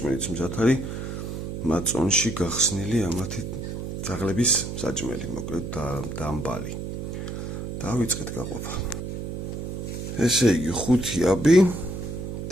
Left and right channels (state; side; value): noise; right; hum, 6 dB below the sound